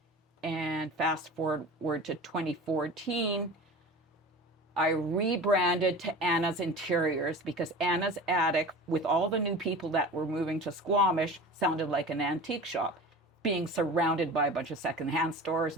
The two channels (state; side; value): normal; both; correlation 0.36